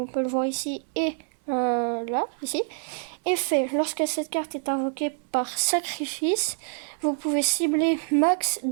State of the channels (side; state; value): left; silent; digital silence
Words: peut le voir ici et là, ici. Effet, lorsque cette carte est invoquée par sacrifice, vous pouvez cibler max